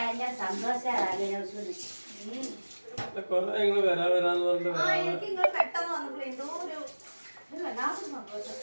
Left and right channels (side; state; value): both; inverted; correlation -1.00